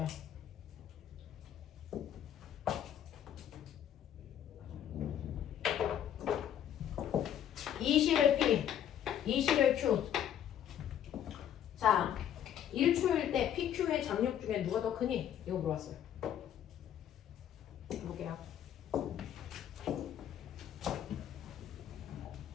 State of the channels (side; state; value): right; quieter; 10.1 dB